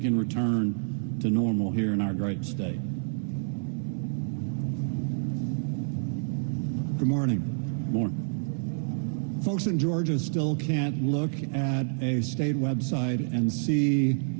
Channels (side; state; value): left; silent; 59 dB below the other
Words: return to normal here in our great state. Good morning. Morning. Folks in Georgia still can't look at a state website and see